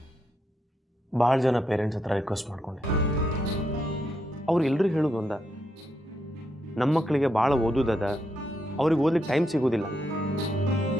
ಭಾಳ ಜನ ಪೇರೆಂಟ್ಸ್ ಹತ್ರ ರಿಕ್ವೆಸ್ಟ್ ಮಾಡ್ಕೊಂಡೆ. ಅವ್ರು ಎಲ್ಲರೂ ಹೇಳೋದು ಒಂದ, ನಮ್ಮ ಮಕ್ಕಳಿಗೆ ಭಾಳ ಓದೋದದ, ಅವ್ರಿಗೆ ಓದ್ಲಿಕ್ಕೆ ಟೈಮ್ ಸಿಗೋದಿಲ್ಲ.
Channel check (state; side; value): normal; both; correlation 0.80